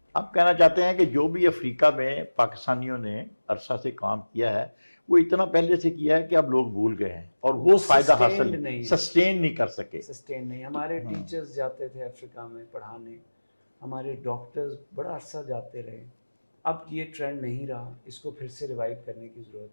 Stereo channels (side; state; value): both; inverted; correlation -1.00